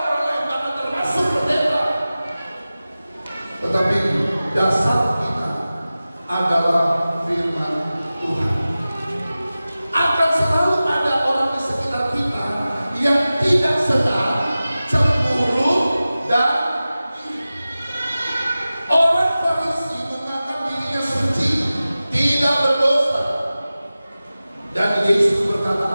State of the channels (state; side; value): inverted; both; correlation -0.96